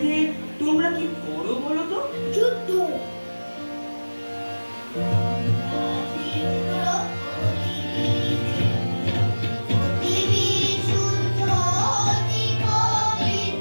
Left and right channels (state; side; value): inverted; both; correlation -1.00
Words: তোমরা কি করো বলো তো? যুদ্ধ।